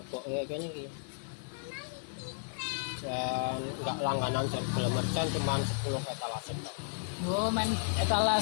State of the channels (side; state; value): right; silent; digital silence